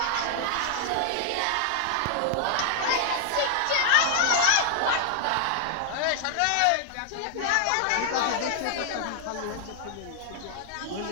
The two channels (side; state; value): both; different; correlation 0.00